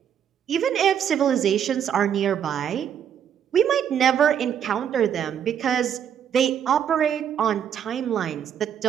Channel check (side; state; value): left; quieter; 8.8 dB